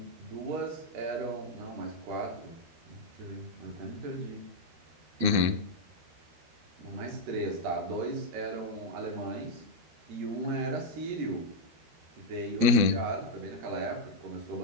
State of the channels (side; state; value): left; late; 12 ms